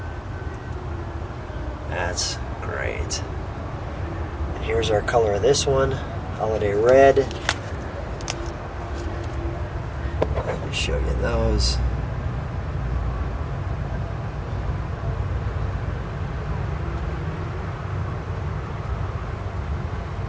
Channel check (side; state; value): both; identical; correlation 1.00